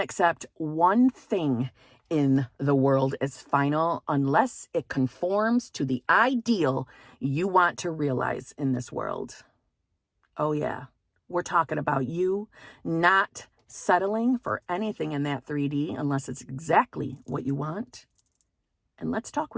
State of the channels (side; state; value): both; identical; correlation 1.00